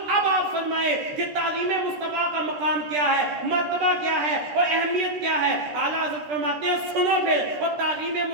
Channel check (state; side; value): late; left; 13 ms